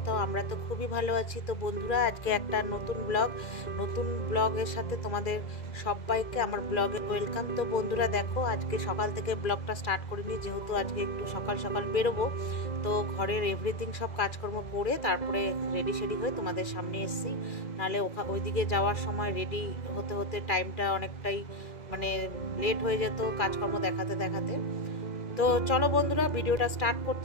তো আমরা তো খুবই ভালো আছি। তো বন্ধুরা, আজকে একটা নতুন ব্লগের সাথে তোমাদের সবাইকে আমার ব্লগে ওয়েলকাম। তো বন্ধুরা দেখো, আজকে সকাল থেকে ব্লগটা স্টার্ট করিনি, যেহেতু আজকে একটু সকাল সকাল বেরোবো। তো ঘরের এভরিথিং সব কাজকর্ম করে তারপরে রেডি সেডি হয়ে তোমাদের সামনে এসেছি। নাহলে ওইদিকে যাওয়ার সময় রেডি হতে হতে টাইমটা অনেকটাই মানে লেট হয়ে যেত কাজকর্ম দেখাতে দেখাতে। তো চলো বন্ধুরা, ভিডিওটা স্টার্ট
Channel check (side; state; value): right; late; 2.0 ms